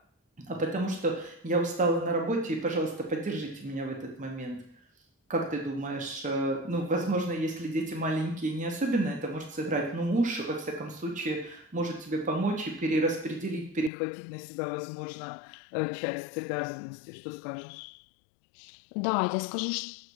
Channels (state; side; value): drops out; right; at 13.9 s